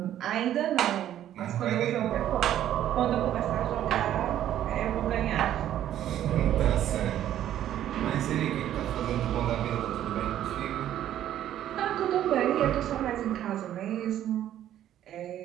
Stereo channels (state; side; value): quieter; left; 11.6 dB